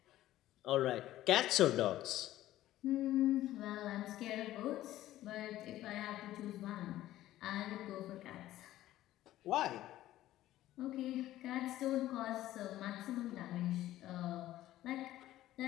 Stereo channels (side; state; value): right; quieter; 14.4 dB